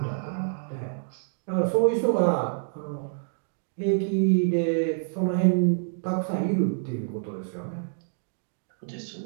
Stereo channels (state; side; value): silent; left; digital silence